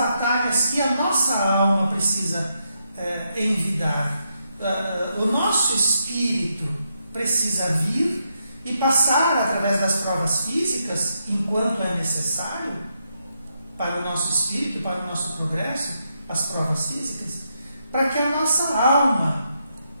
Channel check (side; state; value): both; inverted; correlation -0.80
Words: que a nossa alma precisa envidar. O nosso espírito precisa vir e passar através das provas físicas, enquanto é necessário, para o nosso espírito, para o nosso progresso, as provas físicas, para que a nossa alma